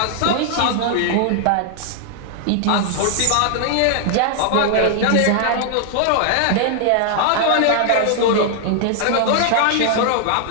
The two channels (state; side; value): different; both; correlation 0.00